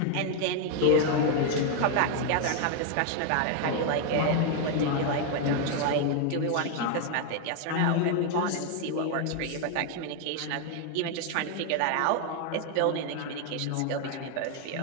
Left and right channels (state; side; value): different; both; correlation 0.00